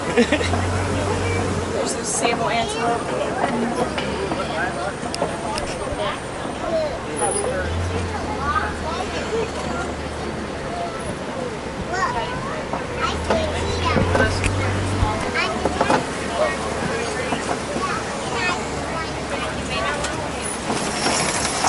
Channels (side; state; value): both; identical; correlation 1.00